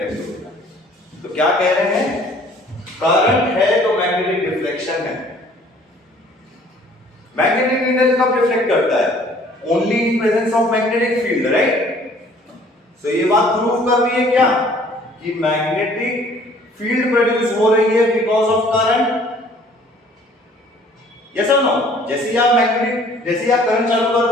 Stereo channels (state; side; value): normal; both; correlation 0.55